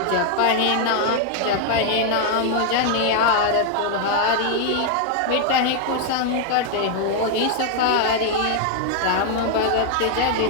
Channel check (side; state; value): both; different; correlation 0.00